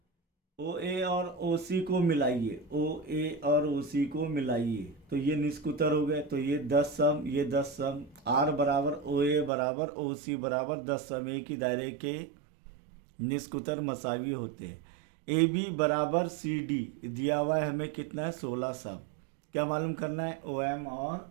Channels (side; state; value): left; drops out; at 9.5 s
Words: ओ ए और ओ सी को मिलाइए, ओ ए और ओ सी को मिलाइए तो ये निस्फ कुतर हो गए, तो ये 10 सम, ये 10 सम। आर बराबर ओ ए बराबर ओ सी बराबर 10 सम, एक ही दायरे के निस्फ कुतर मसावी होते हैं। ए बी बराबर सी डी दिया हुआ है हमें, कितना है, 16 सम। क्या मालूम करना है? ओ एम